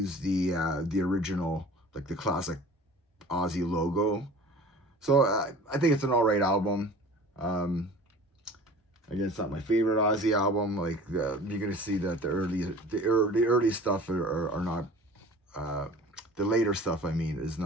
the original, like the classic Ozzy logo. So I think it's an alright album. Um, Again, it's not my favorite Ozzy album. Like you're gonna see that the early stuff are not the later stuff. I mean, is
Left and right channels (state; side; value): normal; both; correlation 0.43